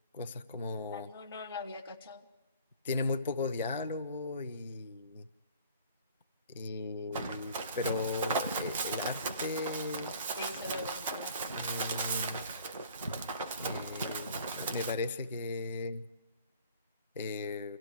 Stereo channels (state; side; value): inverted; both; correlation -0.50